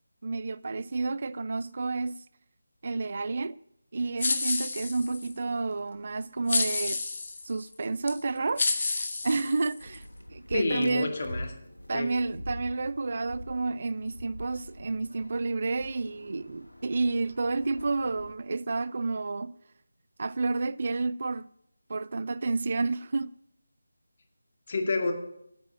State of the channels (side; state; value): both; inverted; correlation -0.94